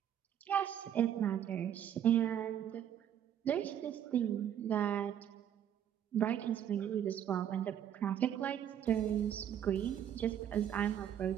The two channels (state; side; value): quieter; left; 9.8 dB